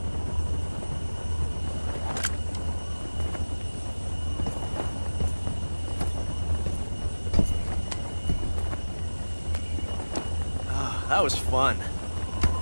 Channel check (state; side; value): inverted; both; correlation -1.00